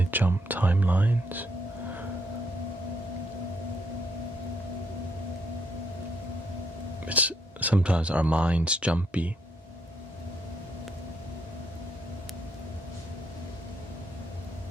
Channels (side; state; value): both; normal; correlation 0.75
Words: jump timelines. Sometimes our mind's jumpy.